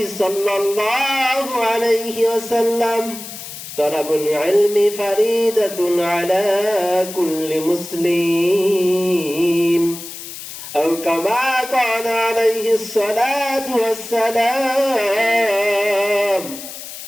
صلى الله عليه وسلم: طلب العلم فريضة على كل مسلم، أو كما قال عليه الصلاة والسلام:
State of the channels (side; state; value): left; noise; hiss, 11 dB below the sound